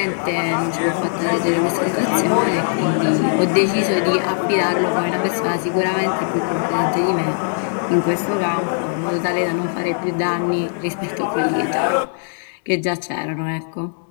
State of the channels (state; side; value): silent; right; digital silence